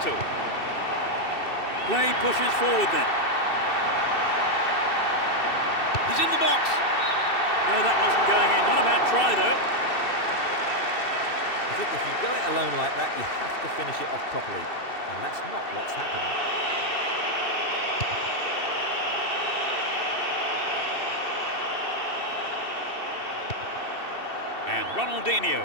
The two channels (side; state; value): right; late; 2.7 ms